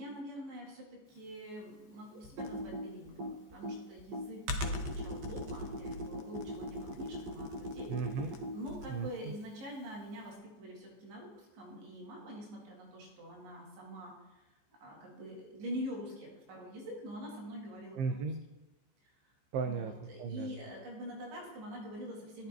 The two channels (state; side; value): late; left; 14 ms